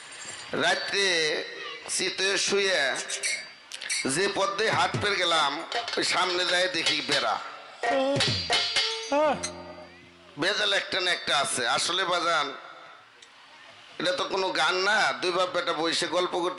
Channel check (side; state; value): both; identical; correlation 1.00